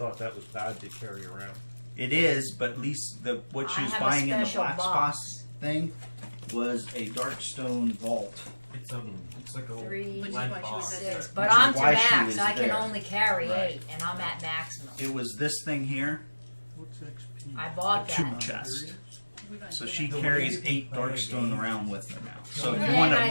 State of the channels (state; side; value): inverted; both; correlation -1.00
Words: that was bad to carry around. It is, but at least what she I was have a buying in the special Black box. Spots thing was a Darkstone vault. It's like a 3, Which is lead why she was box. at 6, the- but Which is I'm to why she max. was I can there. only carry Right. 8, and I'm at maximum. It was this thing here, What's XP? I bought a tool that. chest. We don't So do she that. The carries way you 8 play the Darkstone game. around with her now. So And if you want I